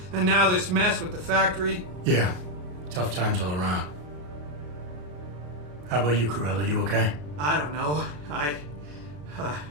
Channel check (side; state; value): left; late; 34 ms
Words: and now this mess with the factory. Yeah, tough times all around. How about you, Corella? You okay? I don't know. I